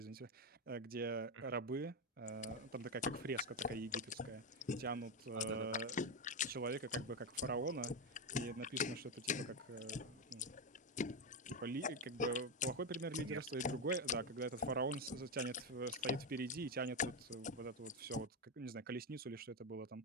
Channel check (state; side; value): normal; both; correlation 0.09